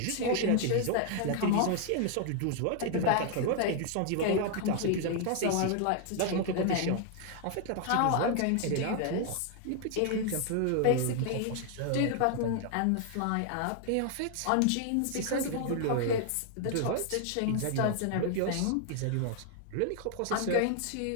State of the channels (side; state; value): both; different; correlation 0.00